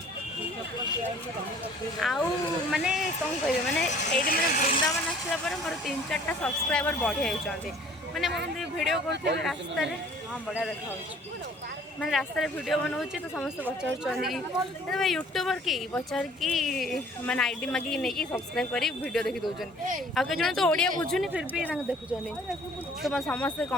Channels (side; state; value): both; normal; correlation 0.53